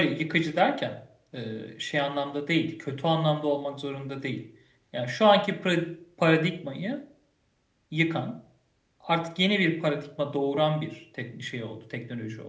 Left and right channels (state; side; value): identical; both; correlation 1.00